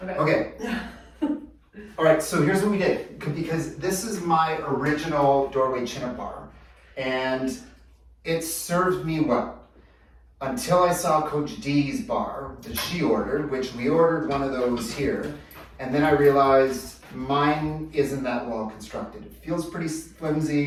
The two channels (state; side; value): identical; both; correlation 1.00